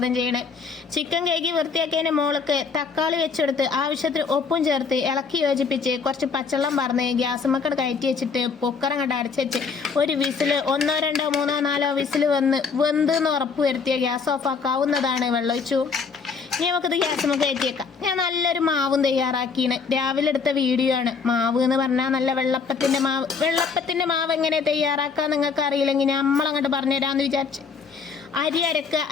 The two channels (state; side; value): quieter; right; 5.4 dB